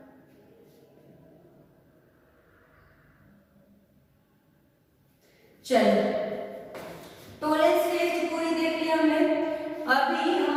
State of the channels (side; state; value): both; identical; correlation 1.00